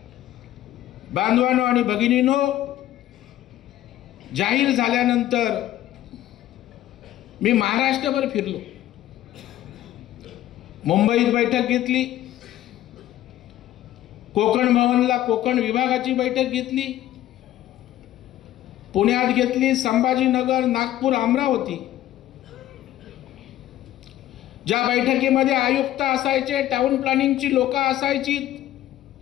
बांधवांनो आणि भगिनींनो, जाहीर झाल्यानंतर मी महाराष्ट्रभर फिरलो, मुंबईत बैठक घेतली, कोकण भवनला कोकण विभागाची बैठक घेतली, पुण्यात घेतली, संभाजीनगर, नागपूर, अमरावती। ज्या बैठकीमध्ये आयुक्त असायचे, टाउन प्लॅनिंगची लोक असायची,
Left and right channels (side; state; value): right; quieter; 13.5 dB